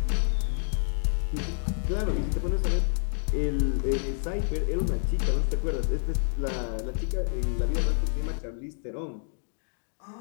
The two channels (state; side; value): silent; right; 59 dB below the other